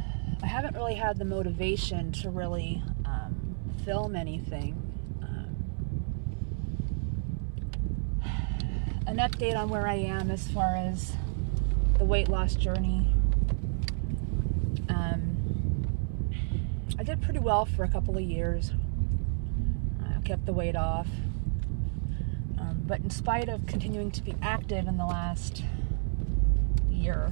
I haven't really had the motivation to really film anything. An update on where I am as far as the weight loss journey. I did pretty well for a couple of years. I kept the weight off. But in spite of continuing to be active in the last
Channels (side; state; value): left; silent; 58 dB below the other